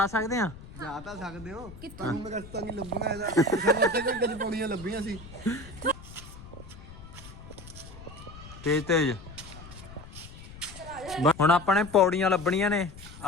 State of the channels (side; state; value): left; noise; rumble, 16 dB below the sound